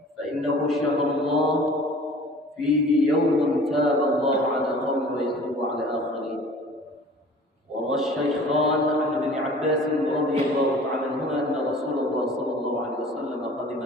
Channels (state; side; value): normal; both; correlation 0.46